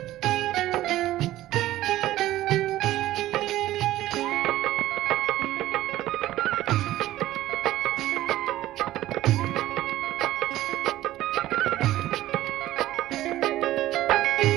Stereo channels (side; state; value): left; quieter; 15.0 dB